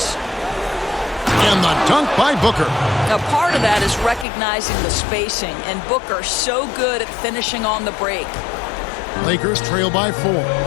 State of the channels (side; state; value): right; drops out; at 4.2 s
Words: And the dunk by Booker. Now, part of that is recognizing the spacing, and Booker so good at finishing on the break. Lakers trail by 4.